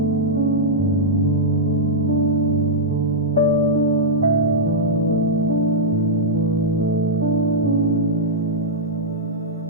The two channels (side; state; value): both; normal; correlation -0.08